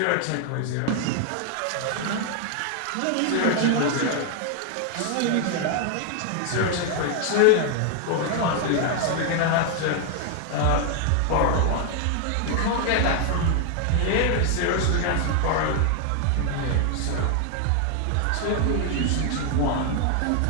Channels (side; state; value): both; different; correlation 0.00